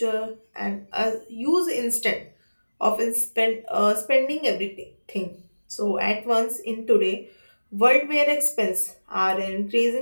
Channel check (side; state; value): both; inverted; correlation -1.00